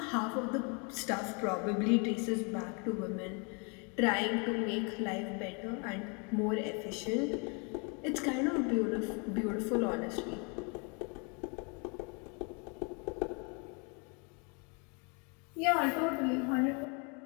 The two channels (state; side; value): quieter; right; 33.9 dB